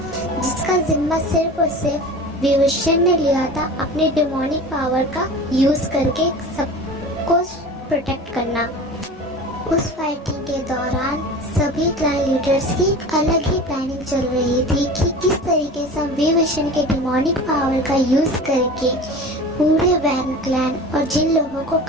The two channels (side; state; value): both; normal; correlation 0.36